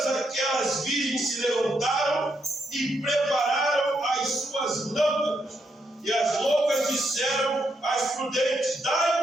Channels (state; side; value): normal; both; correlation 0.79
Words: aquelas virgens se levantaram e prepararam as suas lâmpadas. E as loucas disseram às prudentes: